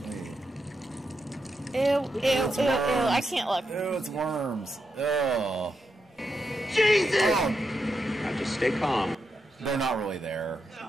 Ew, ew, ew, ew. I can't look. Ew, it's worms. Oh. Jesus! Oh. Now just stay calm. They're not really there.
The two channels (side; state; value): both; normal; correlation 0.85